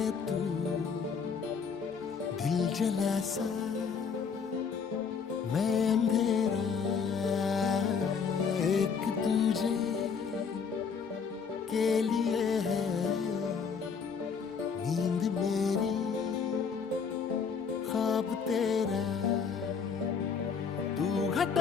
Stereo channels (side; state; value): right; quieter; 6.0 dB